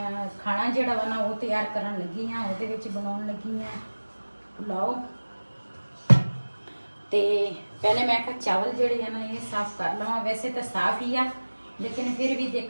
ਖਾਣਾ ਜਿਹੜਾ ਵਾ ਨਾ ਉਹ ਤਿਆਰ ਕਰਨ ਲੱਗੀ ਆ। ਉਹਦੇ ਵਿੱਚ ਬਣਾਉਣ ਲੱਗੀ ਆ ਪੁਲਾਓ। ਤੇ ਪਹਿਲੇ ਮੈਂ ਕਿਹਾ ਚਾਵਲ ਜਿਹੜੇ ਆ ਨਾ ਇਹ ਸਾਫ਼ ਕਰ ਲਵਾਂ। ਵੈਸੇ ਤਾਂ ਸਾਫ਼ ਹੀ ਆ, ਲੇਕਿਨ ਫਿਰ ਵੀ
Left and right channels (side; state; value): both; inverted; correlation -1.00